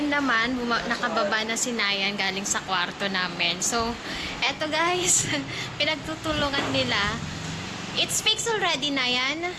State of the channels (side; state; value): both; identical; correlation 1.00